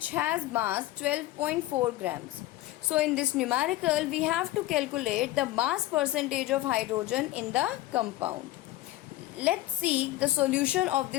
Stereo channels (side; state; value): right; quieter; 16.4 dB